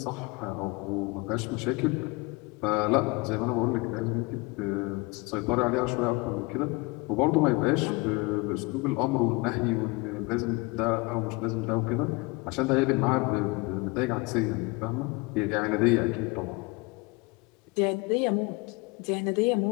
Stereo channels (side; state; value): right; quieter; 25.5 dB